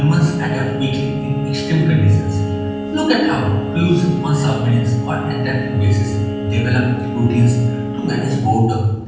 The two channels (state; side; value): identical; both; correlation 1.00